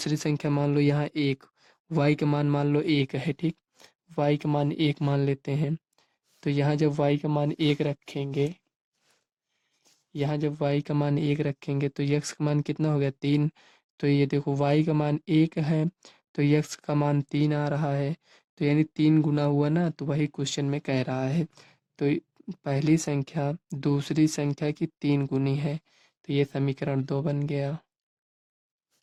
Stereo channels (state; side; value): identical; both; correlation 1.00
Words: संख्या मान लो यहाँ 1, y का मान मान लो 1 है, ठीक। y का मान 1 मान लेते हैं। तो यहाँ जब y का मान 1 रखेंगे, यहाँ जब y का मान 1 रखेंगे तो x का मान कितना हो गया, 3। तो ये देखो y का मान 1 है तो x का मान 3 आ रहा है। तो यानी 3 गुना हुआ ना, तो वही क्वेश्चन में कह रहा है। तो पहली संख्या दूसरी संख्या की 3 गुनी है, तो ये समीकरण 2 बन गया।